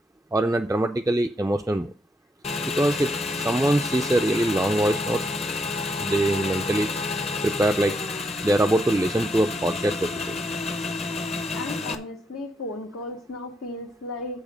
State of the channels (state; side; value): normal; both; correlation 0.78